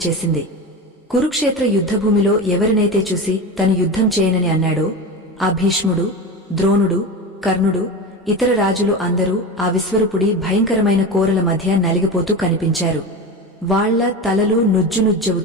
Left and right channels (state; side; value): normal; both; correlation 0.25